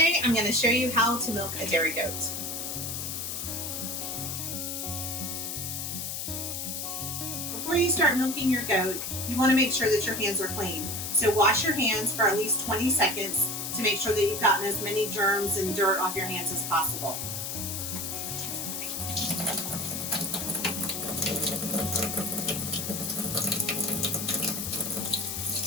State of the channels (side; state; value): left; noise; hiss, 4 dB below the sound